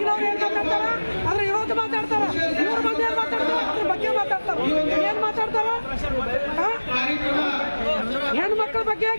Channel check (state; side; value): inverted; both; correlation -1.00